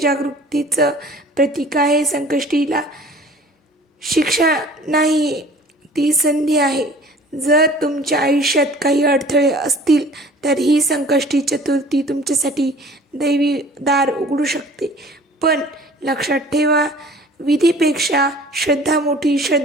प्रतीक आहे. संकष्टीला शिक्षा नाही, ती संधी आहे. जर तुमच्या आयुष्यात काही अडथळे असतील तर ही संकष्टी चतुर्थी तुमच्यासाठी दैवी दार उघडू शकते. पण लक्षात ठेवा, विधीपेक्षा श्रद्धा मोठी,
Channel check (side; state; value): both; normal; correlation 0.48